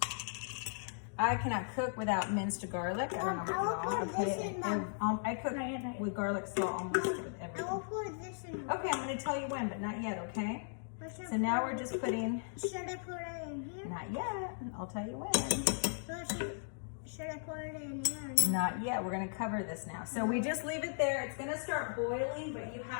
I cannot cook without minced garlic. I don't know about y'all. I put it in. I cook with garlic salt almost with everything. I will put this in. Okay, I'm going to tell you when, but not yet, okay? So now we're just putting... Should I put it in here? Not yet. I'll tell you when. Should I put it in here? Not yet. We're going to cover this now. So we just leave it there. It's going to start boiling, but you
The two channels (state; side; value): silent; right; digital silence